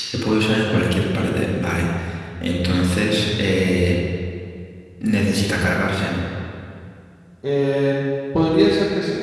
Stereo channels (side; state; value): both; identical; correlation 1.00